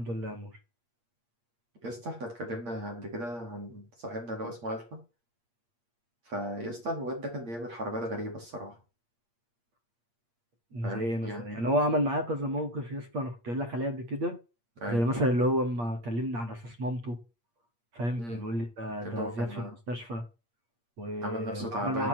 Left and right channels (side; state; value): left; late; 8.5 ms